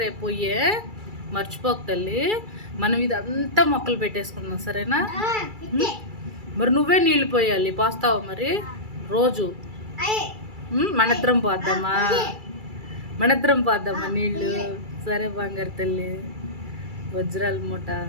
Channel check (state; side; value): late; left; 2.3 ms